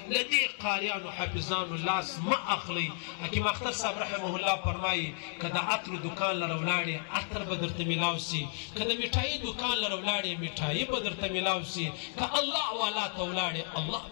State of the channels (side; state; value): right; silent; 56 dB below the other